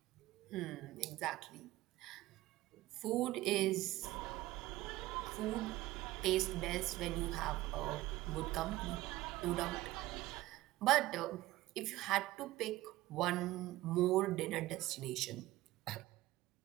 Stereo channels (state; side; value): quieter; left; 17.0 dB